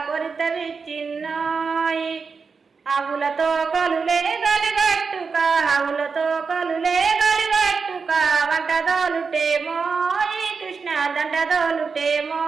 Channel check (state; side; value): quieter; left; 5.1 dB